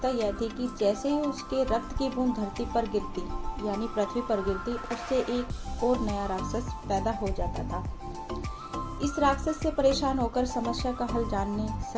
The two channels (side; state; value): both; identical; correlation 1.00